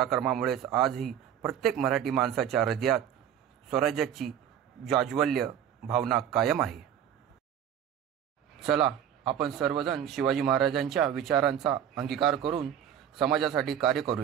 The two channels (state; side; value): quieter; left; 9.5 dB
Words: आजही प्रत्येक मराठी माणसाच्या हृदयात स्वराज्याची जाज्वल्य भावना कायम आहे. चला, आपण सर्वजण शिवाजी महाराजांच्या विचारांचा अंगीकार करून समाजासाठी कार्य